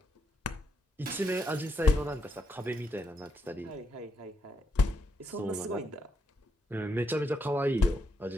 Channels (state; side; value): normal; both; correlation 0.80